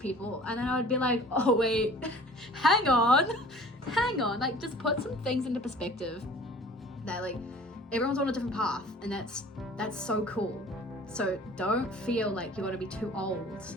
and then I would be like, oh wait, hang on, like, just put some things into perspective. That, like, everyone's on a different path, and that's so cool. So don't feel like you're gonna be too old,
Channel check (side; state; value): both; normal; correlation 0.47